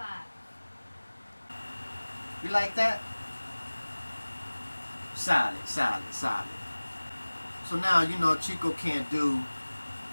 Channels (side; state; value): both; inverted; correlation -1.00